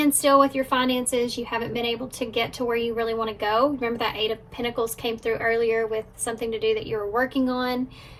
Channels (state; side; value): identical; both; correlation 1.00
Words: with your finances, you haven't been able to get to where you really want to go. Remember that 8 of Pentacles came through earlier with something to do that you were working on,